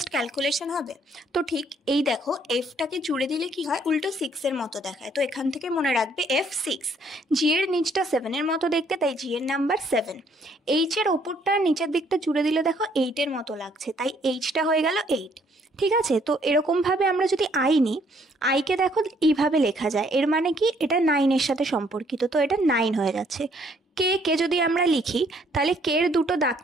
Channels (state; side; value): normal; both; correlation 0.65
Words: ক্যালকুলেশন হবে। তো ঠিক এই দেখো, এফটাকে জুড়ে দিলে কি হয়, উল্টো 6-এর মতো দেখায়। তো এখান থেকে মনে রাখবে F6। জি এর নিচটা 7-এর মতো দেখতে, তাই জি এর নাম্বার 7। এইচ এর ওপরটা নিচের দিকটা জুড়ে দিলে দেখো 8-এর মতো লাগছে, তাই এইচটা হয়ে গেল 8। ঠিক আছে, তো এরকমভাবে আমরা যদি আই নিই, আইকে দেখো এইভাবে লেখা যায়, এর মানে কি এটা 9-এর সাথে সম্পর্কিত, তো এটা 9 হয়ে যাচ্ছে। কে যদি আমরা লিখি, তাহলে কের দুটো